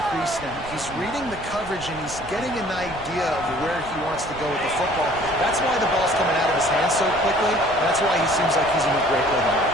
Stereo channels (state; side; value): noise; right; rumble, 15 dB below the sound